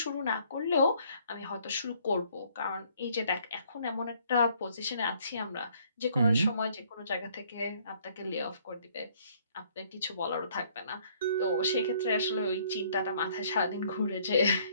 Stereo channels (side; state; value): both; inverted; correlation -0.62